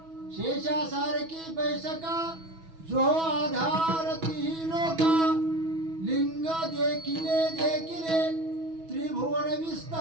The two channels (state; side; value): late; left; 6.1 ms